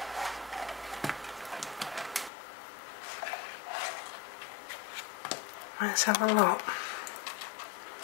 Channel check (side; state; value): right; drops out; at 2.3 s